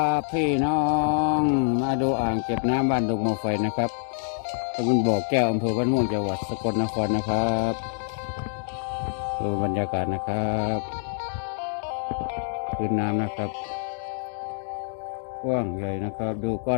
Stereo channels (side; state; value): right; silent; 61 dB below the other